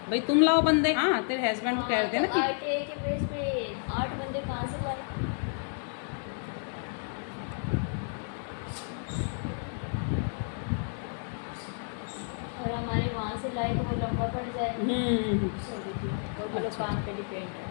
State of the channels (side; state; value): right; silent; 57 dB below the other